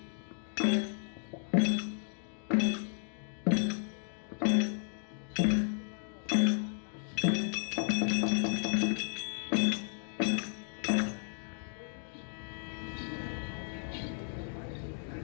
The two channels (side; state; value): right; silent; 55 dB below the other